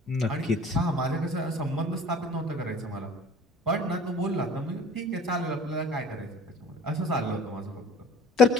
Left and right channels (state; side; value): normal; both; correlation 0.48